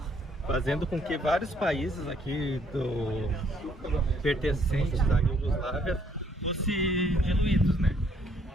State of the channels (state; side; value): normal; both; correlation 0.66